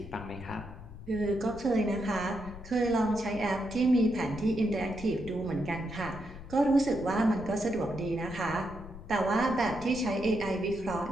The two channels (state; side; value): noise; left; rumble, 14 dB below the sound